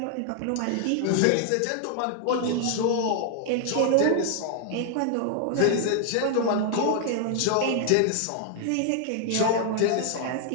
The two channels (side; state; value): both; different; correlation 0.00